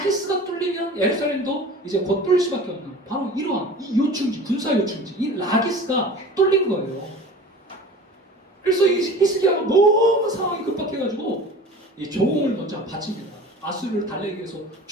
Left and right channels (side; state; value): both; normal; correlation 0.39